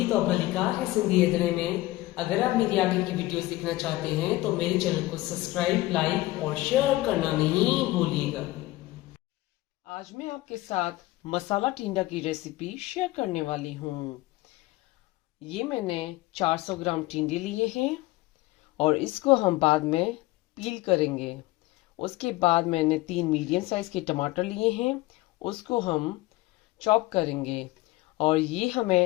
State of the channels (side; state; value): right; quieter; 18.8 dB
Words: और मलिका है सिंधी अदरे में। अगर आप मेरी आगे की वीडियोस देखना चाहते हैं तो मेरे चैनल को सब्सक्राइब, लाइक और शेयर करना नहीं भूलिएगा। आज मैं आपके साथ मसाला टिंडा की रेसिपी शेयर करने वाली हूँ। ये मैंने 400 ग्राम टिंडे लिए हैं और इसको हम बाद में पील करेंगे। उसके बाद मैंने 3 मीडियम साइज के टमाटर लिए हैं, उसको हम चॉप करेंगे। और ये